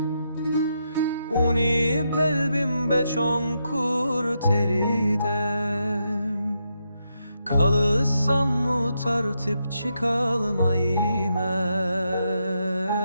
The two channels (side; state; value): both; inverted; correlation -0.82